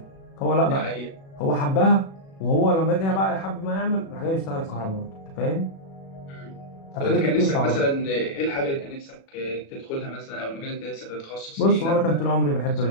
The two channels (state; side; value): late; right; 36 ms